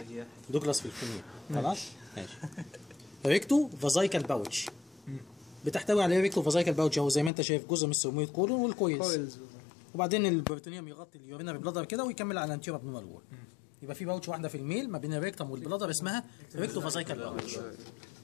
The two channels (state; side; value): drops out; right; at 7.3 s